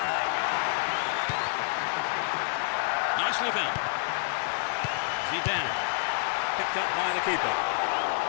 Nicely found. Zidane, picked up by the keeper.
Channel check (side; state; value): right; silent; digital silence